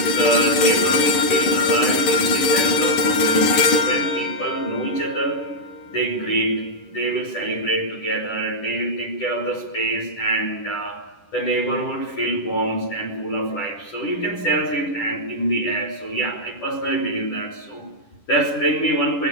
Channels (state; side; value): late; right; 10 ms